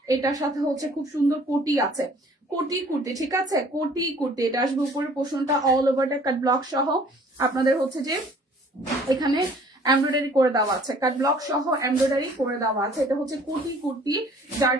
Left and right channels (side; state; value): both; normal; correlation 0.54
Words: এটার সাথে হচ্ছে খুব সুন্দর কোটি আছে, কোটি কুর্তি, ঠিক আছে, কোটি কুর্তি। এটা আসবে উপরের পোর্শনটা অল ওভারটা কাট ব্লক সহ আপনাদের হচ্ছে যে এখানে এমব্রয়ডারি করে দেওয়া আছে, কাট ব্লক সহ এমব্রয়ডারি করে দেওয়া আছে। এটা হচ্ছে কোটি কুর্তি, যার